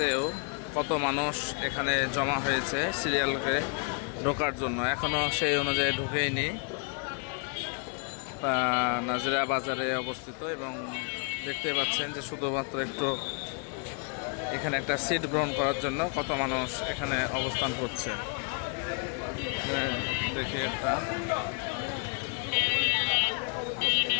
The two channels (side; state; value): right; quieter; 37.9 dB